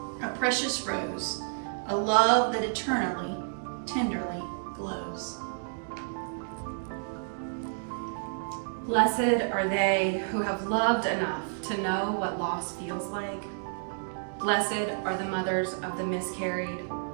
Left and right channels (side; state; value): left; silent; digital silence